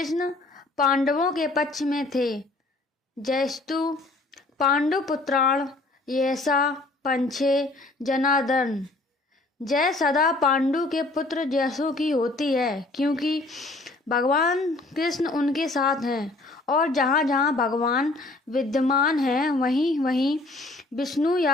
पांडवों के पक्ष में थे। जयस्तु पांडुपुत्राण यैसा पंछे जनार्दन। जय सदा पांडु के पुत्र जैसों की होती है, क्योंकि भगवान कृष्ण उनके साथ हैं और जहाँ जहाँ भगवान विद्यमान हैं वहीं वहीं विष्णु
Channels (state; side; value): quieter; right; 3.0 dB